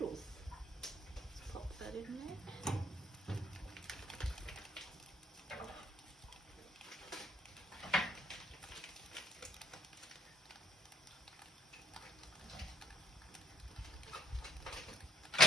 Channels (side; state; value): both; normal; correlation 0.64